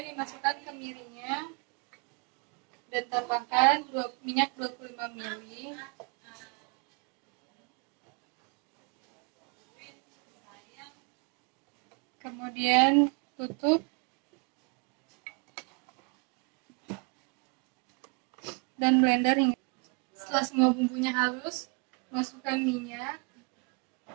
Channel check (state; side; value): quieter; left; 34.5 dB